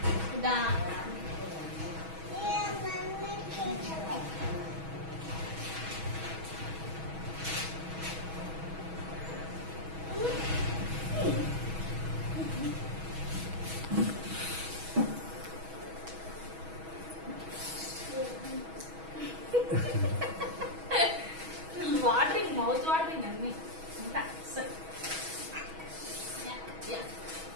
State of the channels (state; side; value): late; left; 6.2 ms